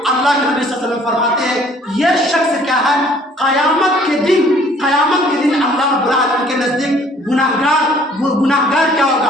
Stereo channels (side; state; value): both; normal; correlation 0.57